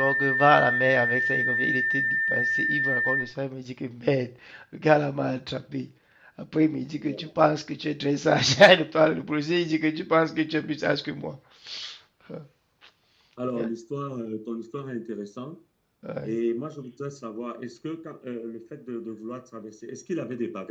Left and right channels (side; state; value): both; identical; correlation 1.00